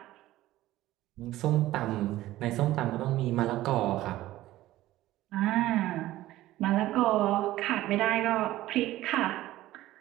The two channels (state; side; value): quieter; left; 15.7 dB